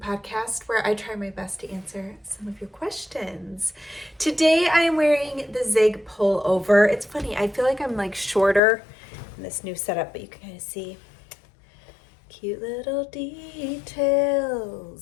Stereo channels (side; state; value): right; drops out; at 8.6 s